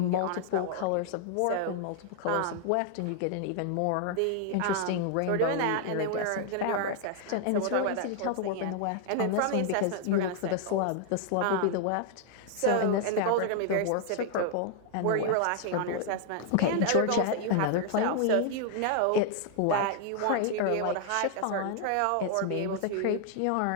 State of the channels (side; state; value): both; different; correlation 0.00